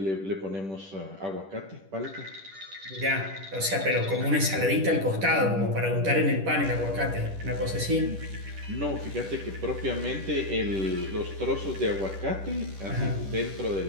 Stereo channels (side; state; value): left; late; 10 ms